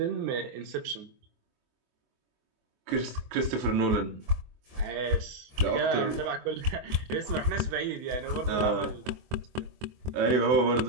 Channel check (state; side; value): late; left; 24 ms